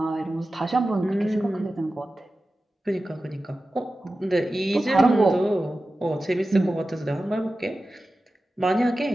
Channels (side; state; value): both; normal; correlation 0.94